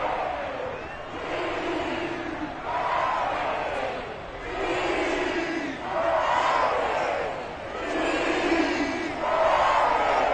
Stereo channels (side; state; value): both; identical; correlation 1.00